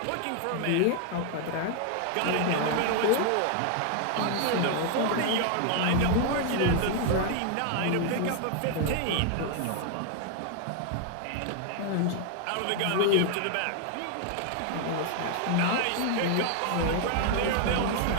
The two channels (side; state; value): both; different; correlation 0.00